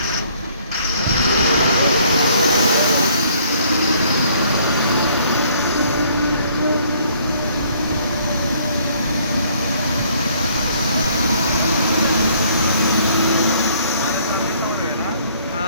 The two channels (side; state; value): both; inverted; correlation -0.62